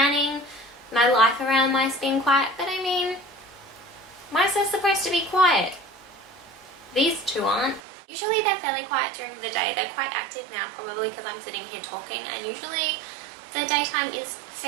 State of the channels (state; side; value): drops out; left; at 7.8 s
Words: my life around mice being quiet, but I mean, mice are supposed to be quiet. These 2 aren't. Usually they're fairly quiet during the day. They're quite active now, probably because I'm sitting here talking, and usually the daytime is